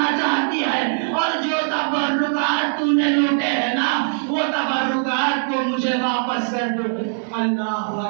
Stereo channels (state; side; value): silent; left; 65 dB below the other